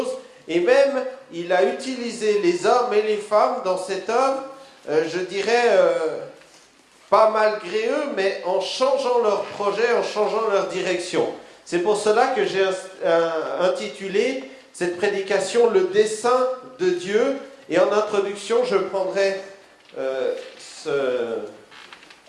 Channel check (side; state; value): both; identical; correlation 1.00